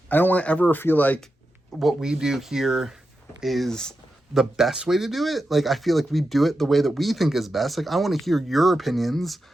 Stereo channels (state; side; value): normal; both; correlation 0.89